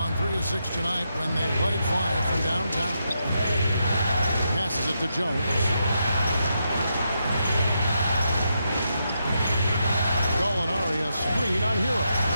3 of 6 tonight when they let it fly from downtown. Passes it to Jones. Gallinari a screen on Hero.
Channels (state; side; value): inverted; both; correlation -0.83